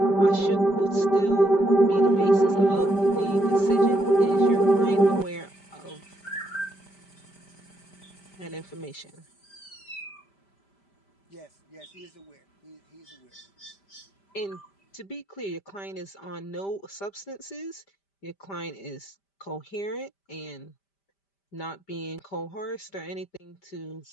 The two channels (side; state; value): right; late; 5.1 ms